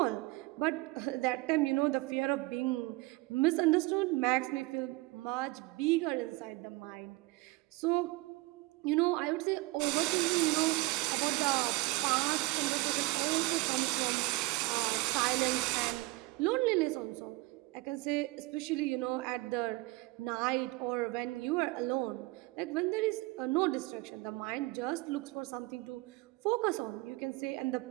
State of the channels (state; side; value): quieter; left; 22.2 dB